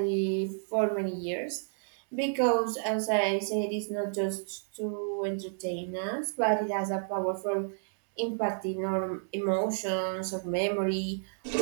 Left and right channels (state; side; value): silent; left; digital silence